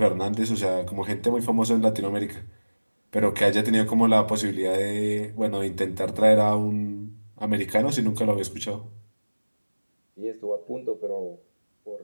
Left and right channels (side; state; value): both; inverted; correlation -1.00